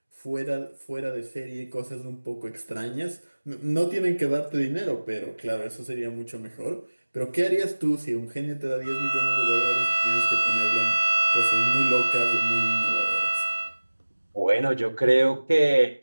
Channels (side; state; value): both; inverted; correlation -1.00